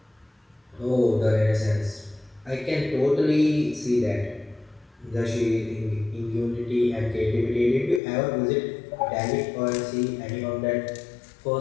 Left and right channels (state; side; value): drops out; right; at 8.0 s